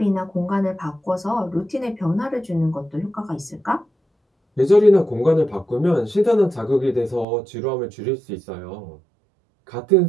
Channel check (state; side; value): drops out; left; at 7.2 s